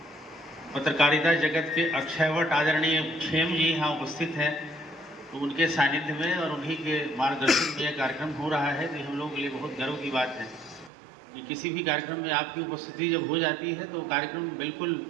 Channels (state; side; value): drops out; left; at 10.9 s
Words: पत्रकारिता जगत के अक्षयवट आदरणीय खेम जी यहाँ उपस्थित हैं, तो उनके सानिध्य में और उन्हीं के मार्गदर्शन में यह कार्यक्रम हो रहा है। तो हम लोगों के लिए बहुत गर्व की बात है कि किसी भी कार्यक्रम में आपकी उपस्थिति जब हो जाती है तो कार्यक्रम बिल्कुल